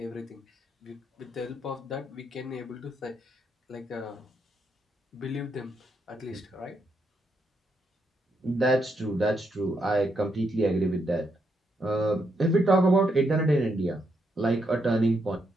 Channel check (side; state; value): both; normal; correlation 0.79